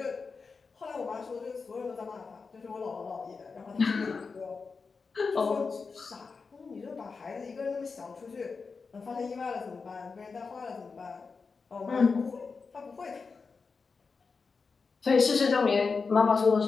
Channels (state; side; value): quieter; right; 4.8 dB